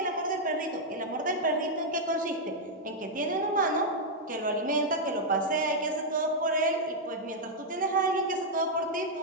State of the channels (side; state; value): both; normal; correlation -0.03